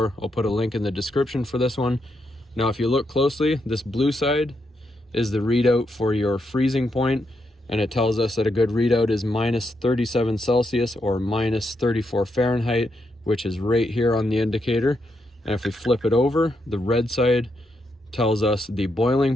I'll put a link in the description for this one. Now if you look closely, this blue side is the readout for your freezing point, and it tells us that a good readout is minus 37 Celsius or minus 34 Fahrenheit, which is right here on the indicator. And if we flip it over, the red side tells us the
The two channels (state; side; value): normal; both; correlation 0.81